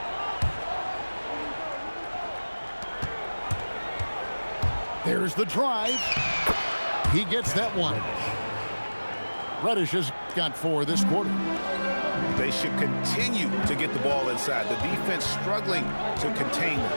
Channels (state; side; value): inverted; both; correlation -1.00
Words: There's the drive. He gets that one. Reddish has got 4 this quarter. They should continue to get the ball inside. The defense struggling to contain them.